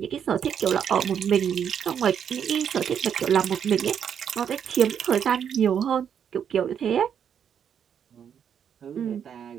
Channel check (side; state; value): left; quieter; 8.3 dB